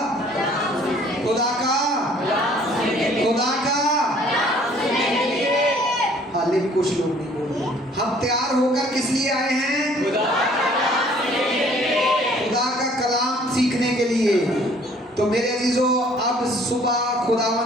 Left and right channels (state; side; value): normal; both; correlation 0.57